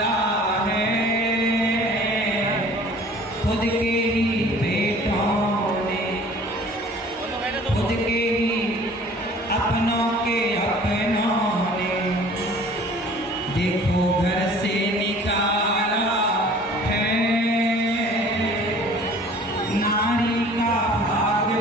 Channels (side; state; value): both; normal; correlation 0.49